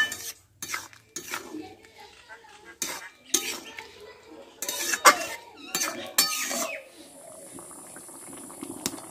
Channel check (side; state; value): both; identical; correlation 1.00